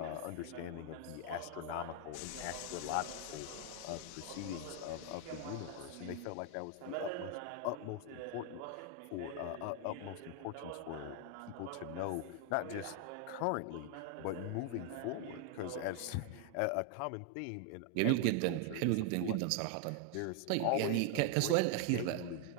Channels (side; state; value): both; different; correlation 0.00